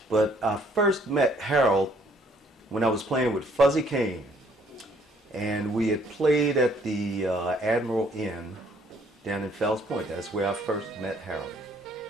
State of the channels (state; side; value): normal; both; correlation 0.63